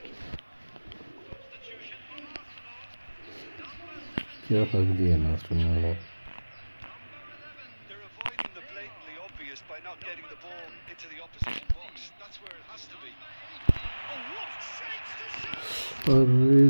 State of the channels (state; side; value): inverted; both; correlation -1.00